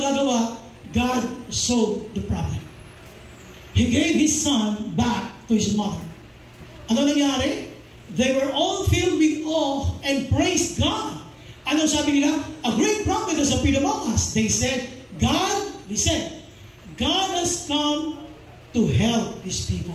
God solved the problem. He gave His son back to his mother. Ano nangyari? They were all filled with awe and praised God. Ano sabi nila? A great prophet has appeared among us. They said, God has come to help His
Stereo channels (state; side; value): identical; both; correlation 1.00